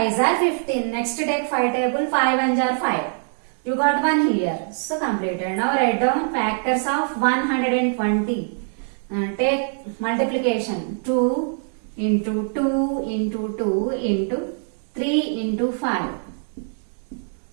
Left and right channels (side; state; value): left; silent; 61 dB below the other